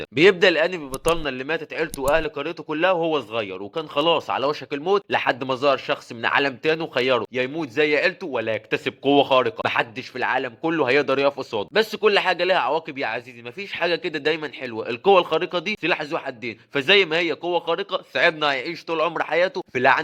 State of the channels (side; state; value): both; identical; correlation 1.00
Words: بيبدأ الأنمي ببطلنا اللي ماتت عيلته وأهل قريته كلها وهو صغير، وكان خلاص على وشك الموت لحد ما ظهر شخص من عالم تاني وخيره يا يموت زي عيلته ولا يكتسب قوة خارقة محدش في العالم كله هيقدر يقف قصاده. بس كل حاجة لها عواقب يا عزيزي، مفيش حاجة كده دايما حلوة. القوة الخارقة دي سلاح ذو حدين، فزي ما هي قوة خارقة صاحبنا هيعيش طول عمر حياته في